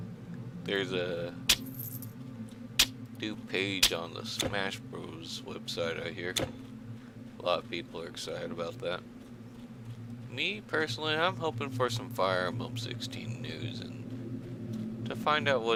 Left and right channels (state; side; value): identical; both; correlation 1.00